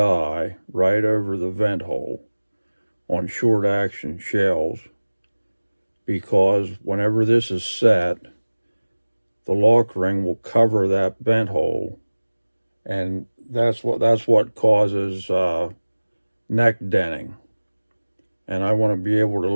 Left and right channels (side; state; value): both; inverted; correlation -1.00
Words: right over the vent hole on short action shells, because whenever this is set, the lock ring will cover that vent hole, and that's what causes neck denting. And I want to be able to